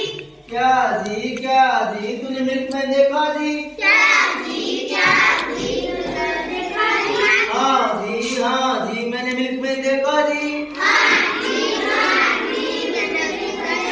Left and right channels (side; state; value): both; identical; correlation 1.00